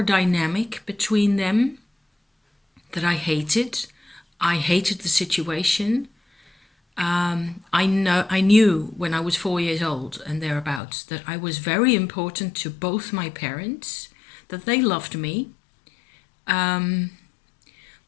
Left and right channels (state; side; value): drops out; right; at 10.8 s